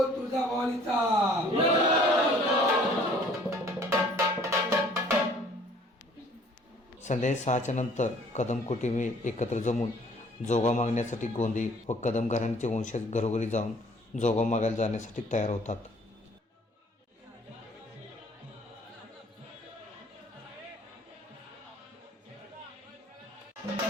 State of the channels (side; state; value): both; normal; correlation 0.56